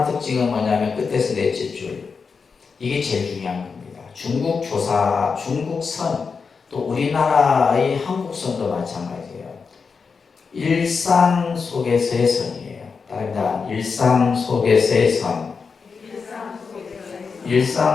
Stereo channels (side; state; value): right; quieter; 5.3 dB